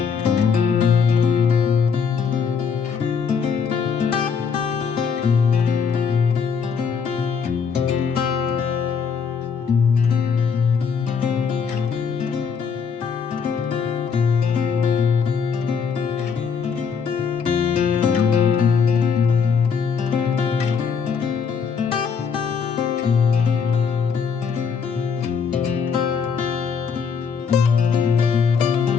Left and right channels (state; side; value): quieter; right; 6.2 dB